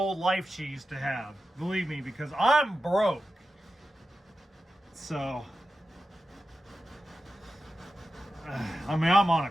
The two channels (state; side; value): normal; both; correlation 0.92